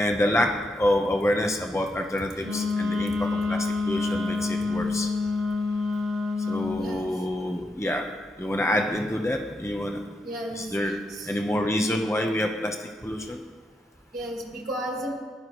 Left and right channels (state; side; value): normal; both; correlation 0.82